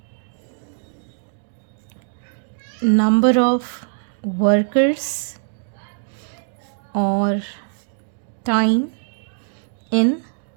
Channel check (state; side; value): silent; left; digital silence